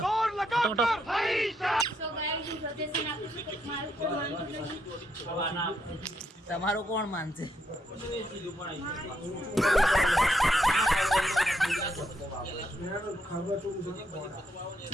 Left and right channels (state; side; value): normal; both; correlation 0.77